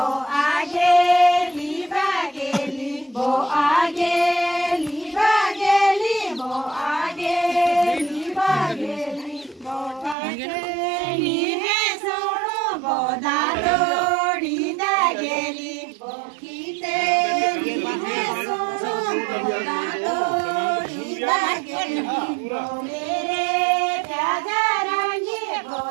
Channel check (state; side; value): drops out; left; at 10.2 s